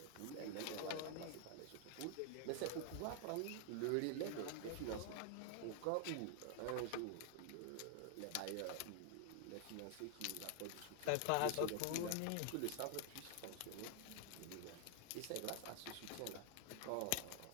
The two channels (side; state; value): both; different; correlation 0.00